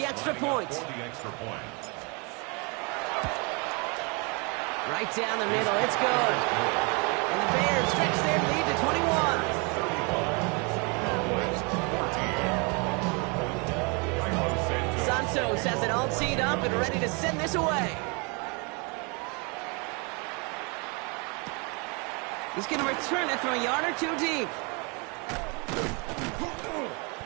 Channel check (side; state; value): left; quieter; 31.9 dB